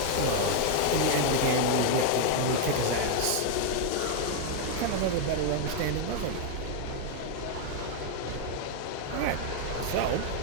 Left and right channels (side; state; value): both; different; correlation 0.00